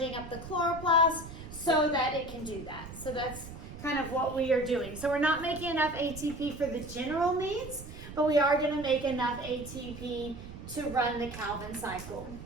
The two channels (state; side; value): noise; right; rumble, 13 dB below the sound